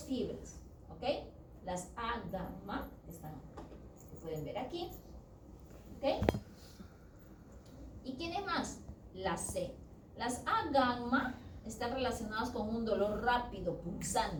fibras, ¿ok? Las A gamma, que pueden ver aquí, ¿ok? ¿Y quiénes más? Las C. Las A gamma están relacionadas con un dolor rápido,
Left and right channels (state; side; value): identical; both; correlation 1.00